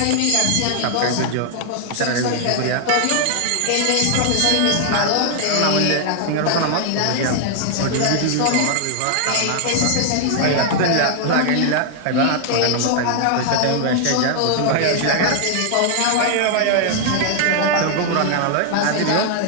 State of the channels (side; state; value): both; different; correlation 0.00